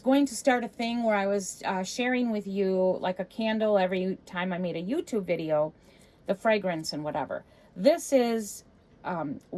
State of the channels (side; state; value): both; identical; correlation 1.00